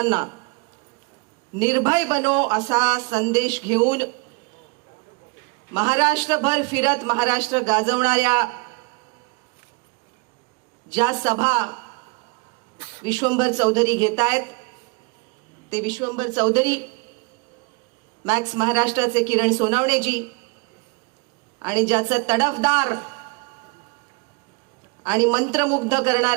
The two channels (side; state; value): left; quieter; 29.0 dB